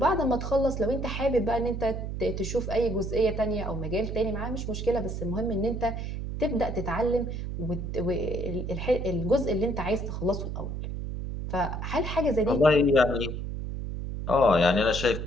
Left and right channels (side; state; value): right; noise; hum, 5 dB below the sound